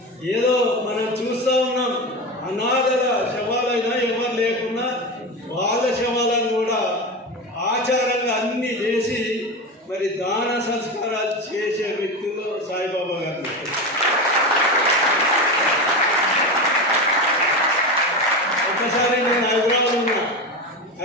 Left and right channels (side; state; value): both; normal; correlation 0.21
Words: ఏదో మనం చూస్తూ ఉన్నాం, అనాథల శవాలైనా ఎవరు లేకున్నా వాళ్ళ శవాలను కూడా ఆచారంగా అన్నీ చేసి మరి దాన సంస్కారాలు చేసే వ్యక్తులు సాయిబాబా గారు. ఒకసారి నేను